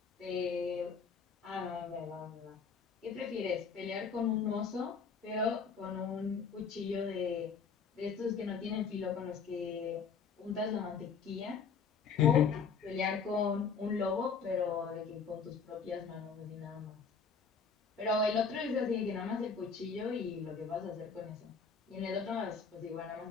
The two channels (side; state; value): right; quieter; 5.7 dB